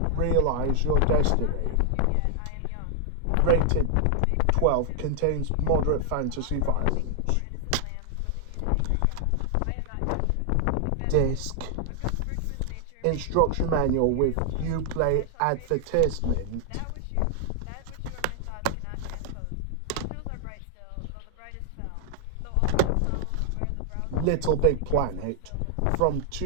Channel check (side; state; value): both; different; correlation 0.00